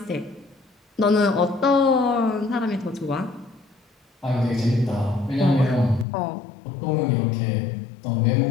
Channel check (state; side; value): drops out; right; at 6.1 s